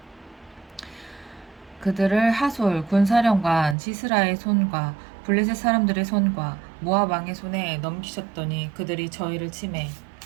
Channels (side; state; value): left; drops out; at 3.8 s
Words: 시스라의 손과 블레셋 사람들의 손과 모압 왕의 손에 넘기셨더니 그들이 저희를 치매